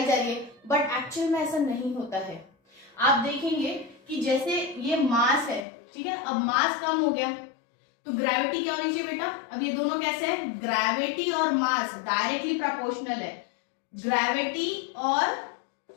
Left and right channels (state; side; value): drops out; right; at 5.7 s